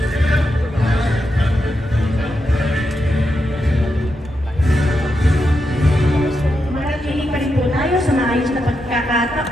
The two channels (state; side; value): normal; both; correlation 0.85